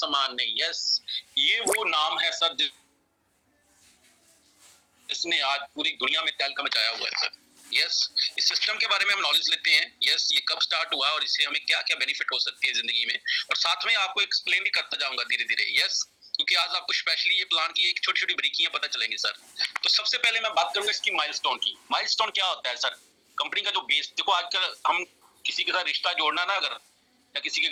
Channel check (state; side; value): identical; both; correlation 1.00